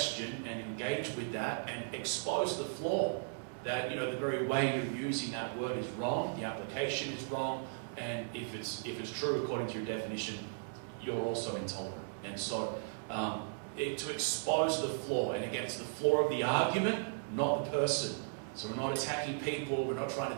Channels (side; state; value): left; silent; digital silence